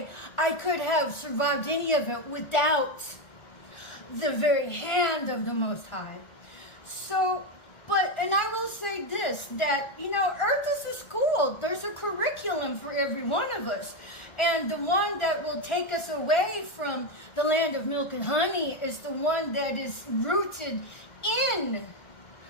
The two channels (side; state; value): right; late; 1.6 ms